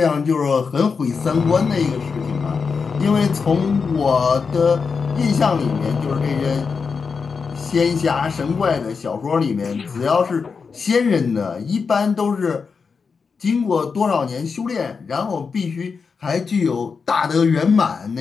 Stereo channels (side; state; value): right; quieter; 5.3 dB